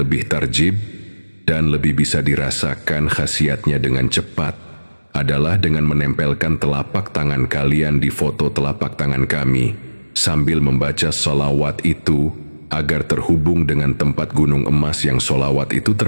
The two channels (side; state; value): both; inverted; correlation -1.00